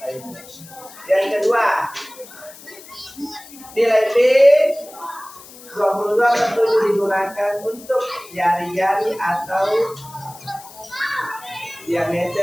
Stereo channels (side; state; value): left; noise; hiss, 19 dB below the sound